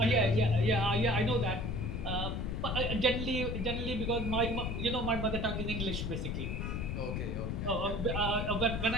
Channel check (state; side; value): noise; left; rumble, 2 dB below the sound